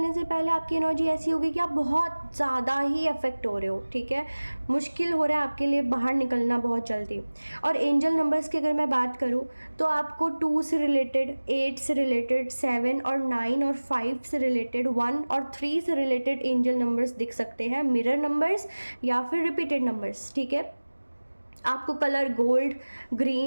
से पहले आपकी एनर्जी ऐसी होगी कि आप बहुत ज़्यादा ही अफेक्ट हो रहे हो, ठीक है। मुश्किल हो रहा है आपके लिए बाहर निकलना बहुत जल्दी। और एंजल नंबर्स की अगर मैं बात करूँ तो आपको 2 से रिलेटेड, 8 से रिलेटेड, 7 और 9 और 5 से रिलेटेड, 1 और 3 से रिलेटेड एंजल नंबर्स दिख सकते हैं, मिरर नंबर्स या फिर रिपीटेड नंबर्स, ठीक है। आपको colour gold,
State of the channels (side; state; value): both; inverted; correlation -1.00